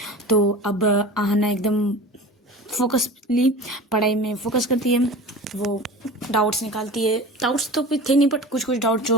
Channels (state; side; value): normal; both; correlation 0.36